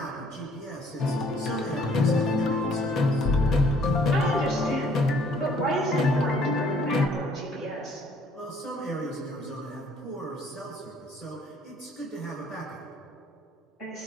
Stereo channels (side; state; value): both; normal; correlation 0.61